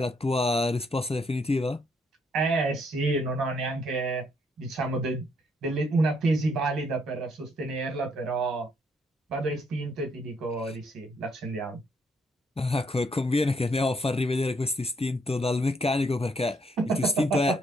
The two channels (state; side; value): normal; both; correlation 0.71